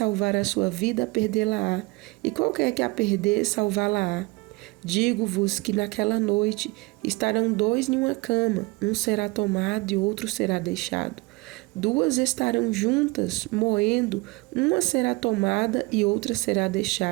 a sua vida, perdê-la-á, e qualquer que a perder, salvá-la-á. Digo-vos que naquela noite estarão 2 em uma cama, um será tomado e outro será deixado. 2 estarão juntas, moendo, uma será tomada e outra será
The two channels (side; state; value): left; quieter; 24.6 dB